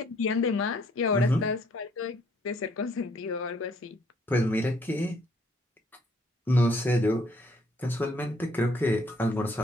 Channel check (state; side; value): normal; both; correlation 0.65